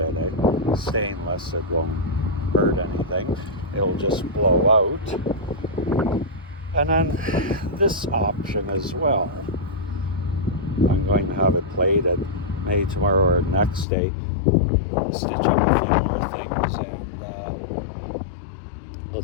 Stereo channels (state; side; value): drops out; right; at 13.9 s